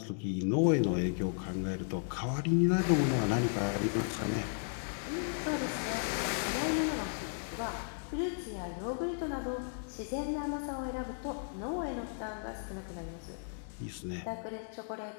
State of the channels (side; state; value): right; silent; digital silence